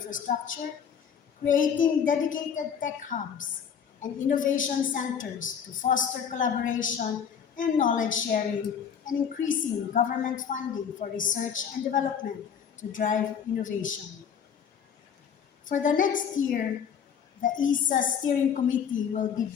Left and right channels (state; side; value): quieter; right; 7.6 dB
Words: creating dedicated tech hubs and innovation centers to foster collaboration and knowledge sharing, and increasing government funding for research and development to drive innovation. For the next year, the ESA Steering Committee will be